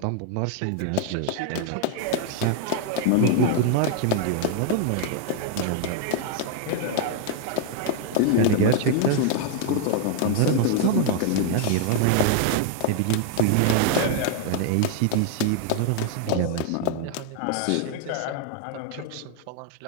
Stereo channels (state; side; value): different; both; correlation 0.00